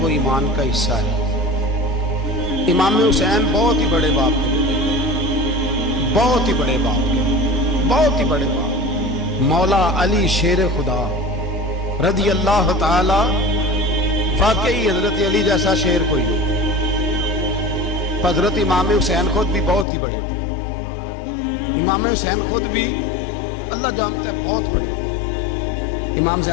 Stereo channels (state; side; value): drops out; right; at 19.9 s